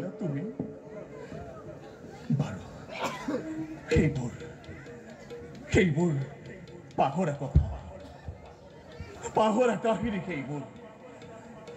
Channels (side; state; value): both; identical; correlation 1.00